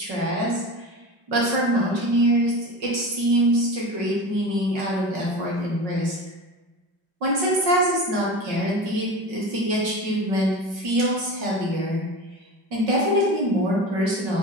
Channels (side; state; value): left; late; 5.4 ms